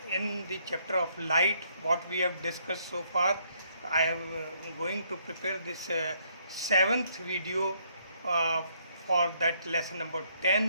in the chapter of light. What we have discussed so far, I am going to prepare this seventh video uh, for that lesson number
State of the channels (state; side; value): inverted; both; correlation -0.69